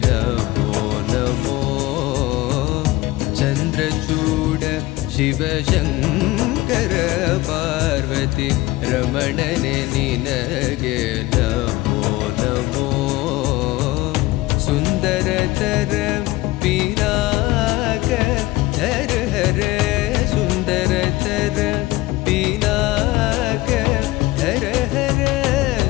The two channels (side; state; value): right; quieter; 18.9 dB